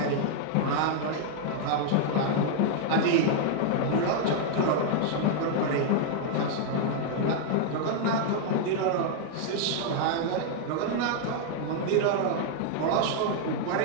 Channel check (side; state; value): both; different; correlation 0.00